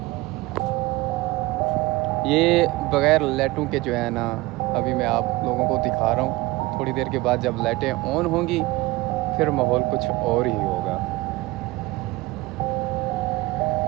ये बग़ैर लाइटों के जो है ना अभी मैं आप लोगों को दिखा रहा हूँ। थोड़ी देर के बाद जब लाइटें ऑन होंगी फिर माहौल कुछ और ही होगा।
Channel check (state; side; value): quieter; left; 20.3 dB